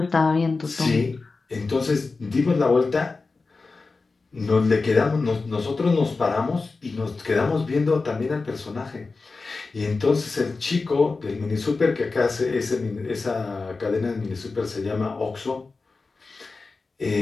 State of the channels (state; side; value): quieter; right; 4.0 dB